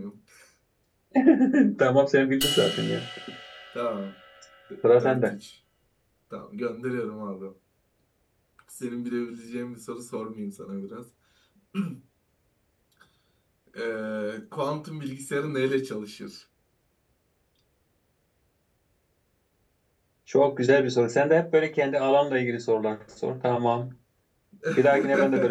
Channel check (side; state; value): both; identical; correlation 1.00